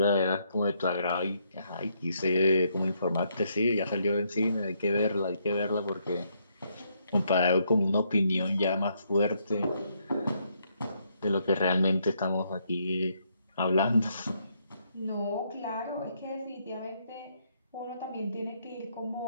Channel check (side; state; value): both; inverted; correlation -0.74